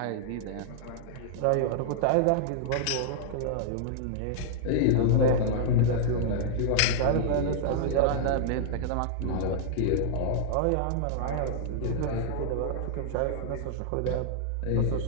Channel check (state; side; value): different; both; correlation -0.01